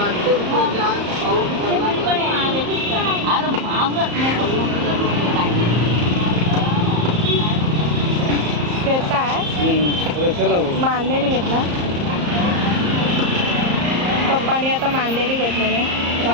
घेताय रशाला मांदेली घेतला पप्पाने आता मांदेली घेतलेली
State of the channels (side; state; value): left; late; 34 ms